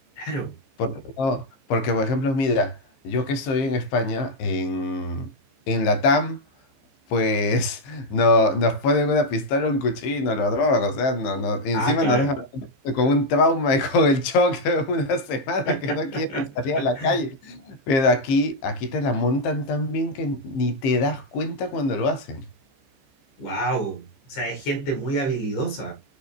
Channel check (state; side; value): late; right; 15 ms